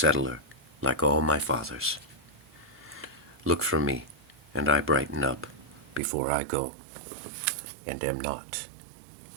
like all my fathers. Look for me, and I brighten up before I go, and am not.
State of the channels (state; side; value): drops out; left; at 6.0 s